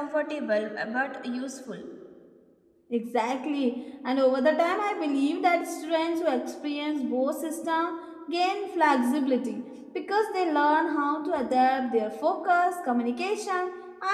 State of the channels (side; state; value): both; identical; correlation 1.00